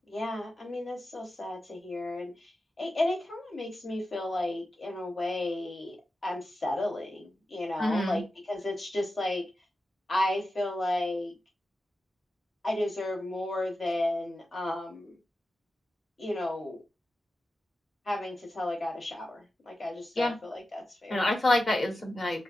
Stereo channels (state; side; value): normal; both; correlation 0.92